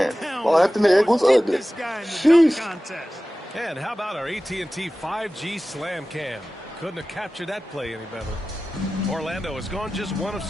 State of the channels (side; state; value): both; normal; correlation 0.96